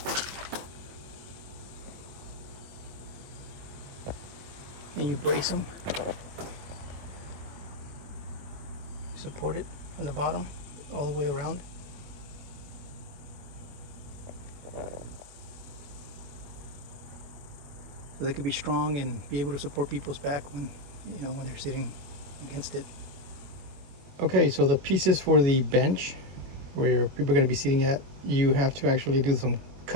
And you brace them, support it on the bottom all the way around. So they could be strong and be able to support people's back when, you know, when they're sitting against it. Okay, so the pieces for the bench where your people are going to be sitting at, you have to actually do some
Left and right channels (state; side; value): late; left; 21 ms